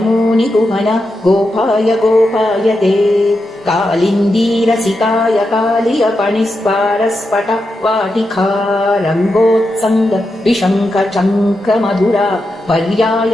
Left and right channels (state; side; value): normal; both; correlation 0.87